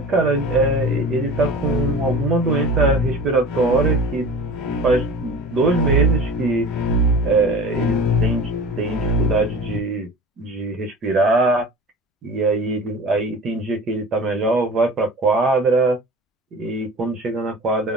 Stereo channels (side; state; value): both; normal; correlation 0.38